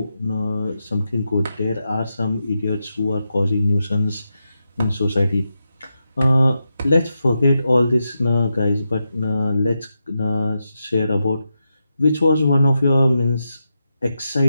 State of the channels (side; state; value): both; inverted; correlation -0.87